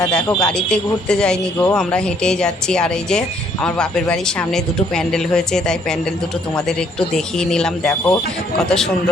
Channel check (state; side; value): normal; both; correlation 0.66